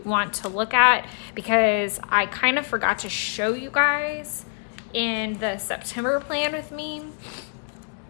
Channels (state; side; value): silent; right; 57 dB below the other